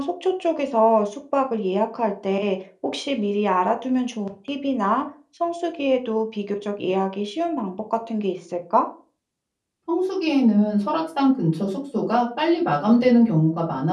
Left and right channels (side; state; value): both; identical; correlation 1.00